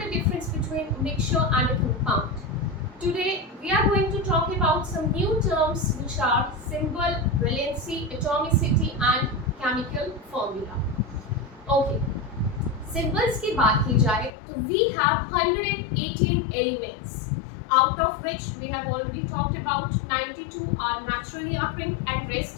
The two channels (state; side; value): drops out; right; at 14.3 s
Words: the difference between a mixture and a compound. Today, we are going to talk about some new terms which are symbol, valency, atomicity and chemical formula. Okay, symbols की बात की जाए तो we have 118 elements. Out of which we have already talked about 92 are naturally occurring and